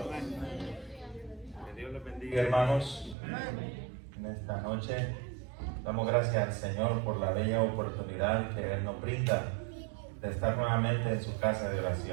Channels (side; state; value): left; drops out; at 3.2 s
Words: Que Dios les bendiga, hermanos. En esta noche damos gracias al Señor por la bella oportunidad que Él nos brinda de estar nuevamente en su casa de